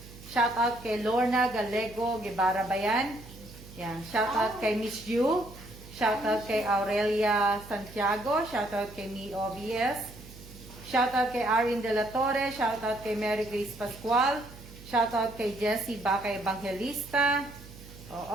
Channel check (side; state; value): right; noise; hum, 18 dB below the sound